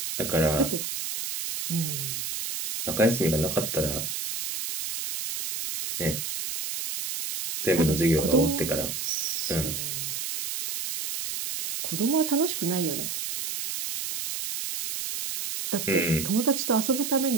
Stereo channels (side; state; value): right; noise; hiss, 4 dB below the sound